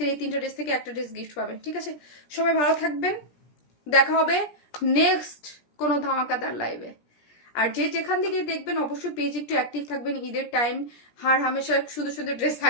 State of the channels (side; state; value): right; late; 17 ms